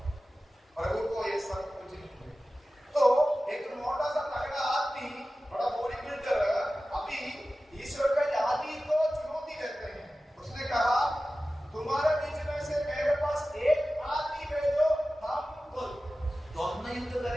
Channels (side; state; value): both; normal; correlation 0.95